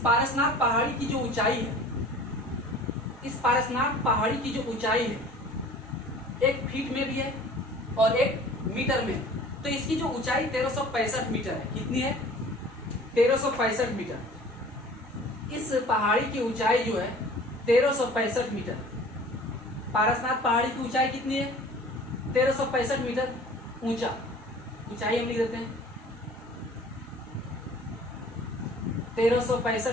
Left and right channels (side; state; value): both; normal; correlation 0.46